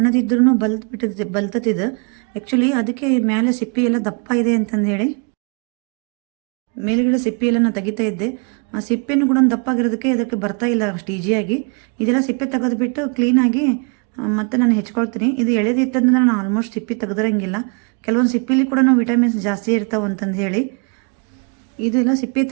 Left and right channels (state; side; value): quieter; left; 35.2 dB